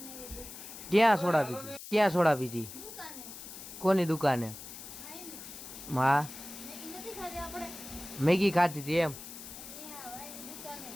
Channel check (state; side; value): noise; left; hiss, 12 dB below the sound